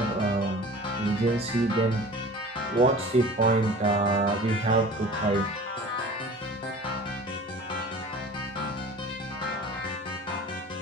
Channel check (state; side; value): normal; both; correlation 0.42